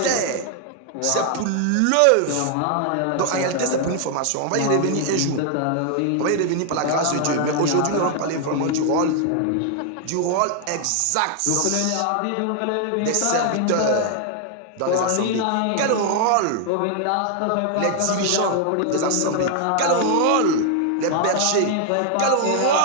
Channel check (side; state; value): both; different; correlation 0.00